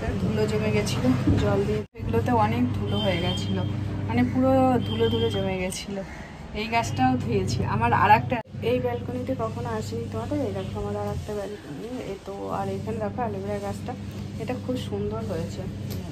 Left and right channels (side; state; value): both; identical; correlation 1.00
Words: ধুলো জমে গেছিলো, জল দিয়ে এগুলোতে অনেক ধুলো হয়ে গেছিলো, মানে পুরো ধুলো ধুলো জমে গেছিলো। এই গাছটাও ধুয়েছি। আমার আর একটা, এই ব্যালকনিতে কখনো আসিনি তোমাদের। এই দেখো আমার আর একটা ব্যালকনি, এ তো। আর এখানে দেখো অ্যালোভেরা গাছটা, এটা খুব সুন্দর হয়েছে,